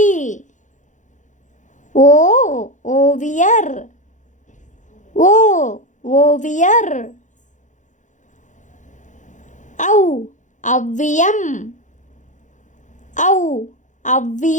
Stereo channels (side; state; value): right; late; 0.36 ms